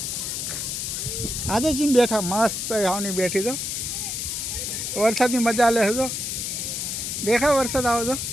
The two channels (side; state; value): left; noise; hiss, 3 dB below the sound